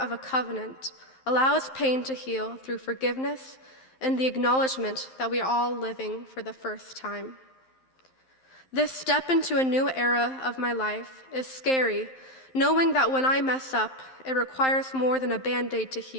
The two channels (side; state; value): right; late; 11 ms